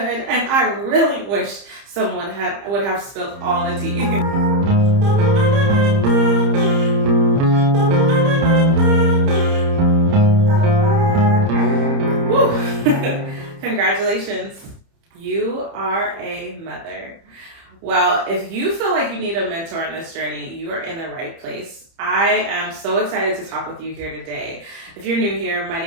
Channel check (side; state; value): left; late; 30 ms